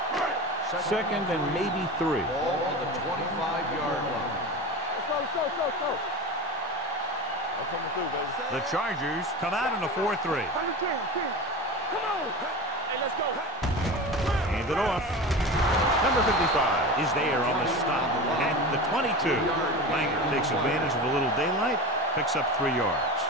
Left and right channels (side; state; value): both; normal; correlation 0.29